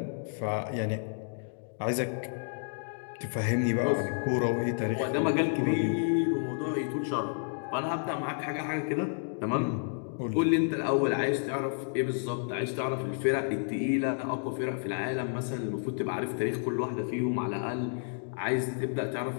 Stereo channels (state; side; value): silent; right; digital silence